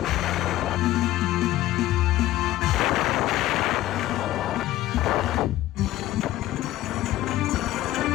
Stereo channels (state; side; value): quieter; right; 15.0 dB